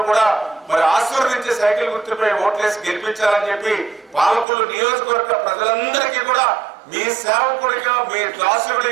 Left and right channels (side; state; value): left; drops out; at 4.5 s